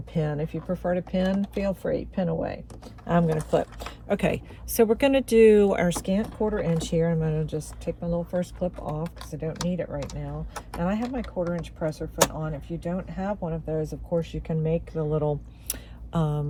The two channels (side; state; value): both; identical; correlation 1.00